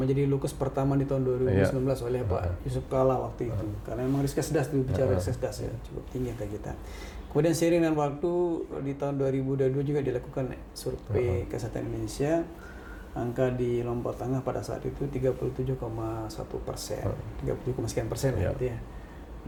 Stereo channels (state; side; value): identical; both; correlation 1.00